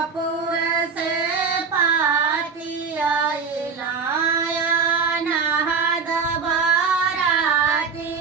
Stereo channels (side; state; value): left; quieter; 5.5 dB